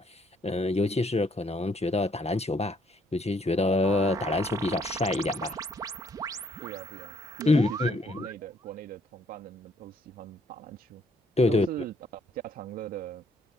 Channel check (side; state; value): both; normal; correlation 0.68